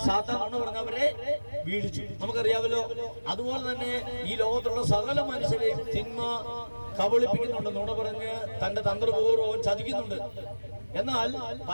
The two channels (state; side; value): inverted; both; correlation -1.00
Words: സാത്താൻ എന്ന് പറഞ്ഞവരെ വീഴിച്ചു. നമുക്കറിയാമല്ലോ. അതുപോലെ തന്നെ ഈ ലോകത്തുള്ള സകല മനുഷ്യരെയും തിന്മ കബളിപ്പിക്കുന്നുണ്ട്, നുണ പറഞ്ഞ് തന്റെ തന്ത്രപൂർവ്വം ചതിക്കുന്നുണ്ട്. എന്നാൽ